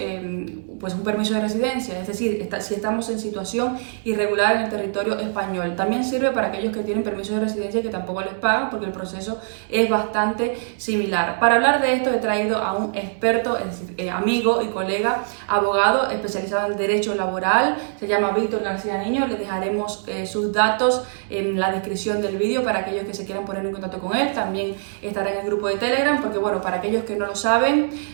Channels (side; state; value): left; silent; digital silence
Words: permiso de residencia, es decir, si estamos en situación irregular en el territorio español. También sirve para aquellos que tienen permiso de residencia que tampoco les pagan, porque el proceso es bastante similar. Para hablar de esto he traído a un experto, es decir, amigo y colega, abogado especializado en derecho laboral, se llama Víctor García Niño. Les dejaremos sus datos en la descripción del vídeo para aquellos que se quieran poner en contacto con él. También estará en el grupo de Telegram, porque bueno, para aquellos que no lo saben,